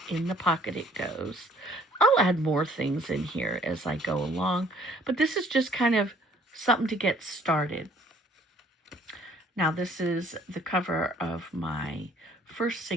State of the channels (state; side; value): normal; both; correlation 0.59